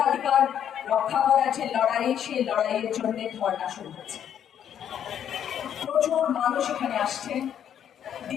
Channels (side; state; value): right; quieter; 9.4 dB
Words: রক্ষা করার যে লড়াই, সেই লড়াইয়ের জন্য ধর্ণা শুরু হয়েছে। প্রচুর মানুষ এখানে আসছে,